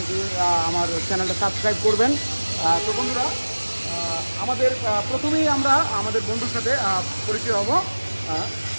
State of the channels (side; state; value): both; inverted; correlation -1.00